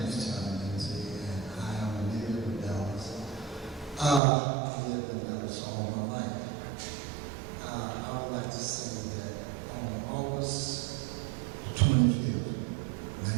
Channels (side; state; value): left; drops out; at 4.2 s